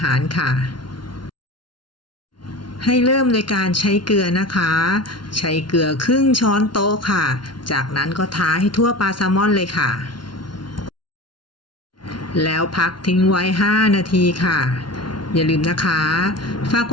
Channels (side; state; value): right; late; 0.71 ms